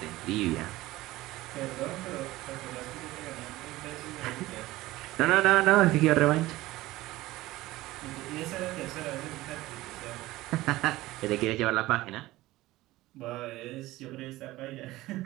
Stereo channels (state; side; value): quieter; left; 17.8 dB